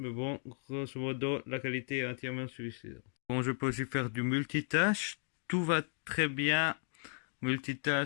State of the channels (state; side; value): silent; right; 54 dB below the other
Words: bon, grosso modo, la qualité est entièrement suffisante. Bon, je peux aussi faire du multitâche. Tout va très bien.